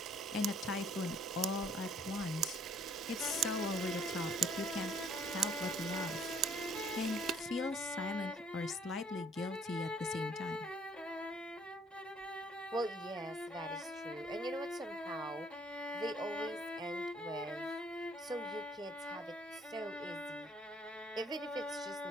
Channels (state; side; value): normal; both; correlation 0.61